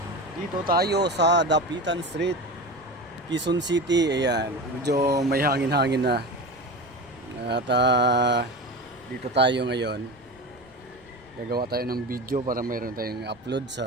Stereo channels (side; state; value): right; noise; rumble, 29 dB below the sound